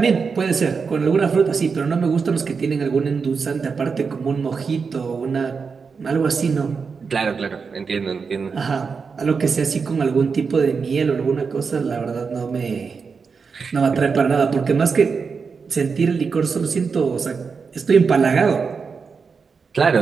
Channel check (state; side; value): quieter; left; 5.4 dB